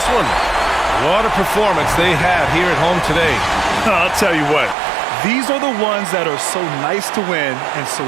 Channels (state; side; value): drops out; left; at 4.8 s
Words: one. What a performance they had here at home today. I'll tell you what, these are the ones that are so nice to win and so